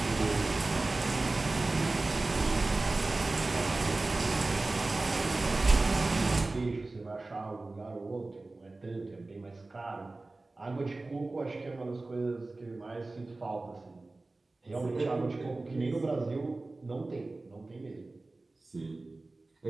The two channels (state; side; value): quieter; left; 3.2 dB